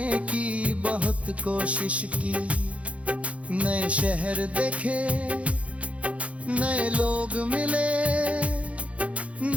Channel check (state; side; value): late; left; 0.064 ms